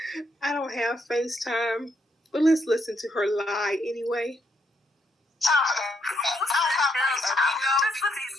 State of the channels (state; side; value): normal; both; correlation 0.76